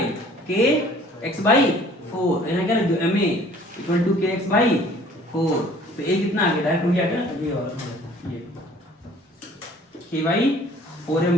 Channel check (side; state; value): both; normal; correlation 0.53